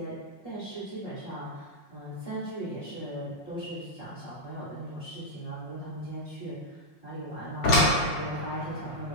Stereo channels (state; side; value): late; right; 5.5 ms